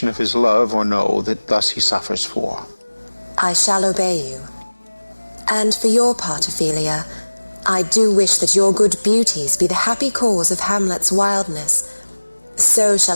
of his love or no that thus he suffers for. I shall obey you. And for your part, Ophelia, I do wish that your good beauties be the happy cause of Hamlet's wildness. So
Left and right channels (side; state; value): both; inverted; correlation -1.00